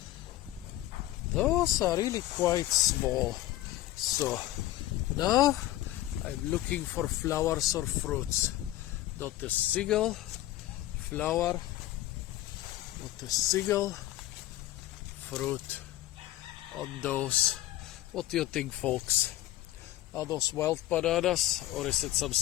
those are really quite small. So now I'm looking for flowers or fruits. Not a single flower, not a single fruit on those. What do you think, folks? Are those wild bananas, or is it some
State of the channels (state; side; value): quieter; right; 15.4 dB